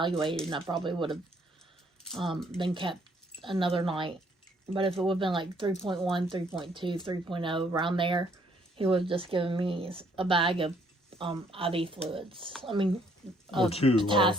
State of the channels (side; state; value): both; normal; correlation 0.66